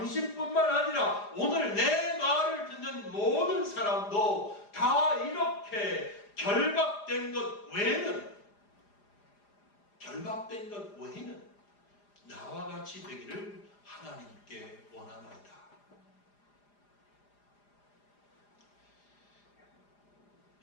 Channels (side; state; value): right; late; 4.9 ms